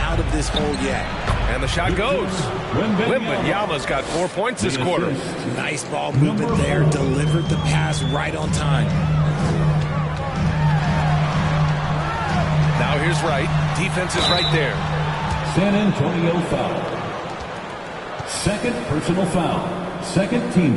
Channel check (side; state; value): both; identical; correlation 1.00